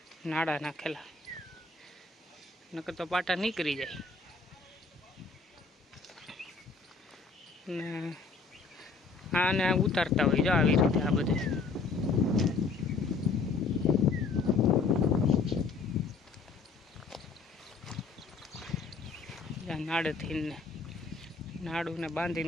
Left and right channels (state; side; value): quieter; right; 4.4 dB